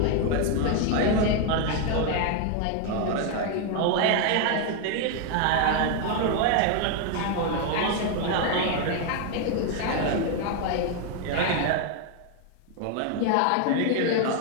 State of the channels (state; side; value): different; both; correlation 0.01